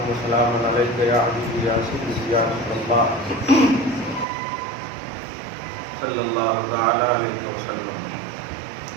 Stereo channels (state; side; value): drops out; left; at 4.2 s